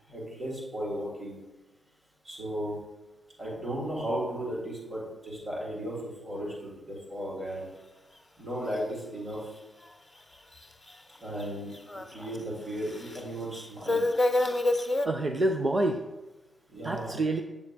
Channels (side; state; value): both; normal; correlation 0.81